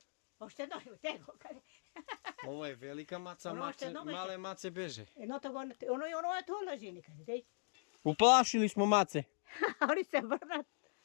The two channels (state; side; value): silent; right; digital silence